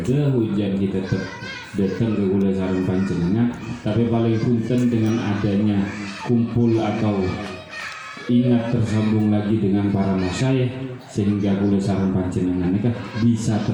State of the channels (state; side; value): identical; both; correlation 1.00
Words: ujian kita tetap datang ke kula sareng panjenengan, tapi paling punten dengan adanya kumpul atau ingat tersambung lagi dengan para masyayikh sehingga kula sareng panjenengan mereka bisa